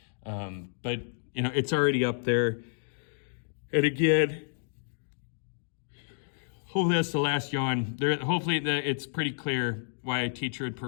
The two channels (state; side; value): silent; right; digital silence